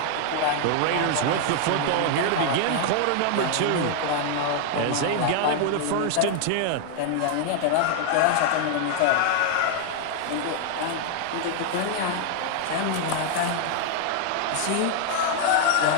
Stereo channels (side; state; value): both; different; correlation 0.00